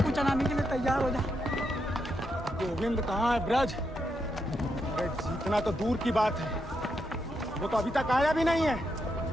चलाने के लिए तैयार हो जा। गोविंद कहाँ है ब्रज? अरे जीतना तो दूर की बात है, वो तो अभी तक आया भी नहीं है।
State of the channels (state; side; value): normal; both; correlation 0.82